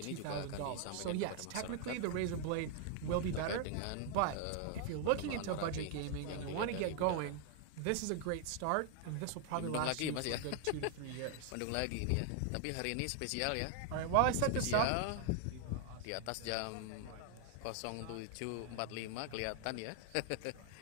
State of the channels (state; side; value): different; both; correlation 0.00